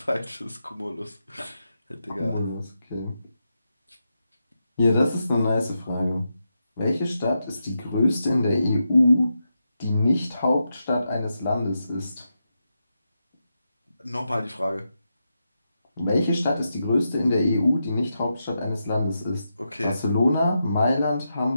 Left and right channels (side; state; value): both; inverted; correlation -0.86